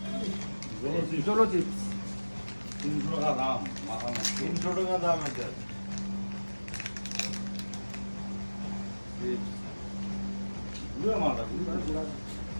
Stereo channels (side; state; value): both; inverted; correlation -1.00